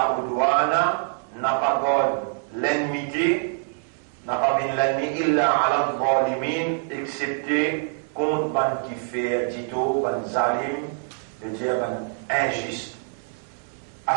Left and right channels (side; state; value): left; silent; 60 dB below the other